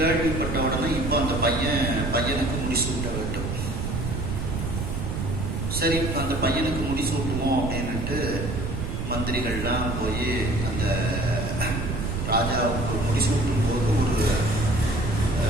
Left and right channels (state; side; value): noise; right; rumble, 3 dB below the sound